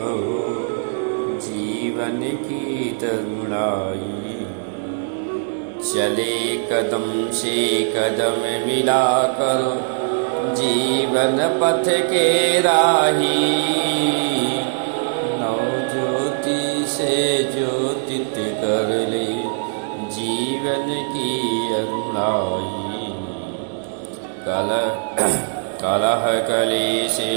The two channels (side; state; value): left; silent; digital silence